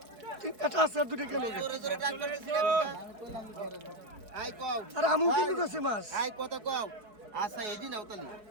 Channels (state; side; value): late; left; 4.7 ms